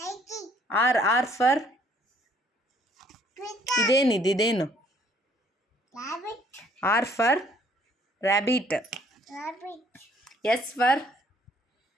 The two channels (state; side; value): normal; both; correlation 0.62